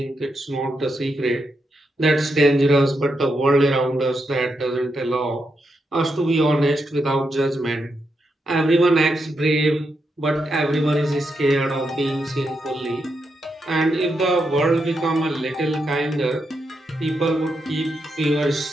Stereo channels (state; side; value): normal; both; correlation 0.83